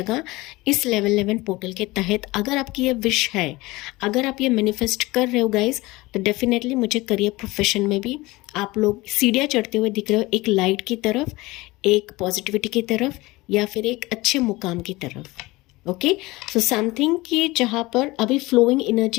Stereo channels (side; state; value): right; quieter; 21.0 dB